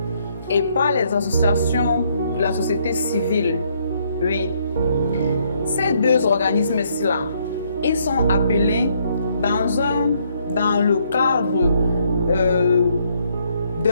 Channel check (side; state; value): both; inverted; correlation -0.70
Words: et par les associations de la société civile. Oui. Ces deux organismes-là, ils sont appelés dans le cadre